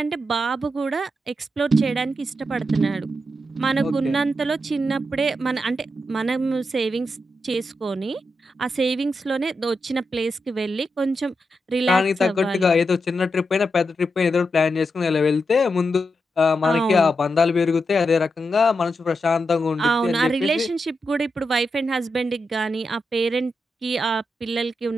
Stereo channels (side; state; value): both; normal; correlation 0.86